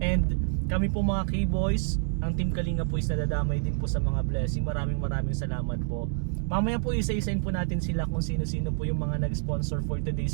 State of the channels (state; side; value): silent; left; digital silence